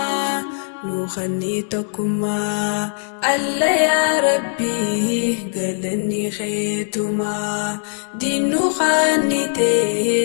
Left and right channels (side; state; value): right; silent; digital silence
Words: نخني توكما الله يا ربي قلني خيتما دينو